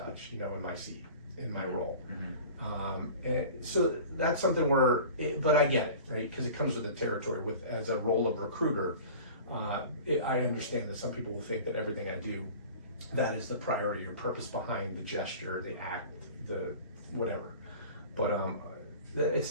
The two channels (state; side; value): inverted; both; correlation -0.40